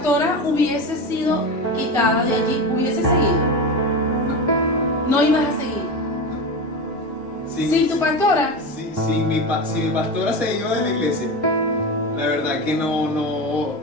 hubiese sido quitada de allí, ¿hubiese seguido? No ibas a seguir. Sin tu pastora. Si mi pastora se iba de la iglesia, la verdad que no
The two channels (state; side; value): normal; both; correlation 0.22